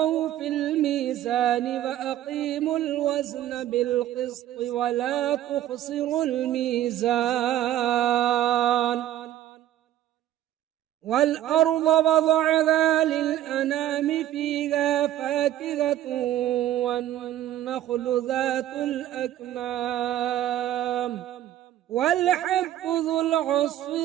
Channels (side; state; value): left; quieter; 12.7 dB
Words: في الميزان وأقيموا الوزن بالقسط ولا تخسروا الميزان والأرض وضعها للأنام فيها فاكهة والنخل ذات الأكمام والحب ذو العصف